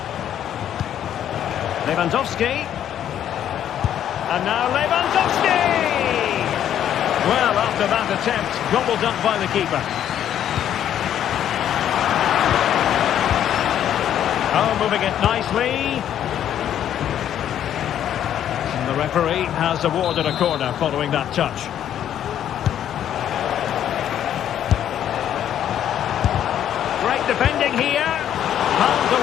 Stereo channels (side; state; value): right; quieter; 10.4 dB